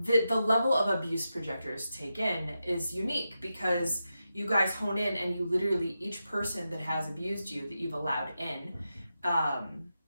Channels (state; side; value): inverted; both; correlation -0.89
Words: level of abuse projectors take in is unique, because you guys hone in and you literally, each person that has abused you, that you've allowed in,